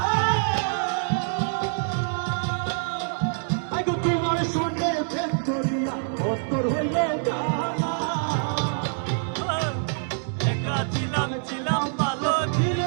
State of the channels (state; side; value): silent; left; digital silence